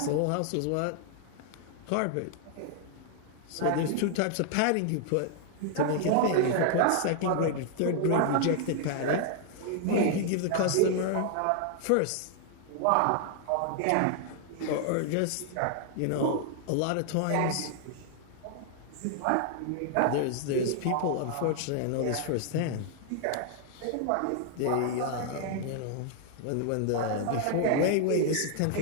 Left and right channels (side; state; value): both; different; correlation 0.00